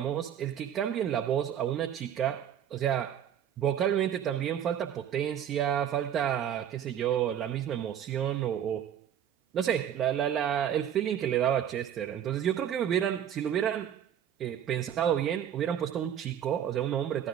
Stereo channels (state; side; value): quieter; left; 9.7 dB